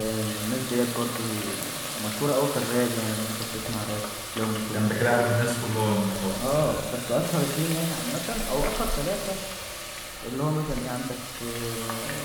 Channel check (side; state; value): both; identical; correlation 1.00